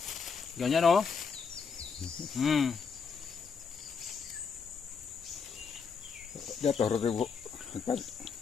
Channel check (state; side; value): quieter; right; 5.8 dB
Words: Ganyan, oh. Jatuh ribu.